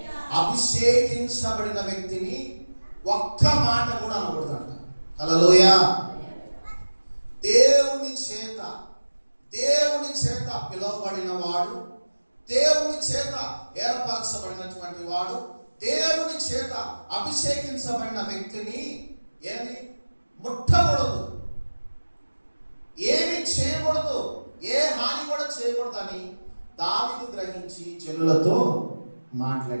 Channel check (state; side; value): inverted; both; correlation -1.00